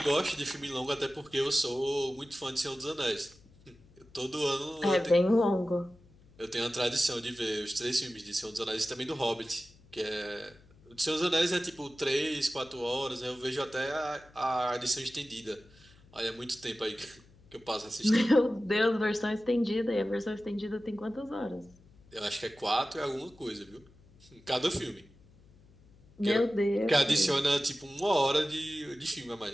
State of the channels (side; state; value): left; noise; hum, 26 dB below the sound